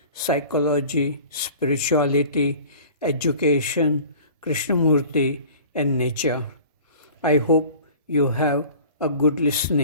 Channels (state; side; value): inverted; both; correlation -0.43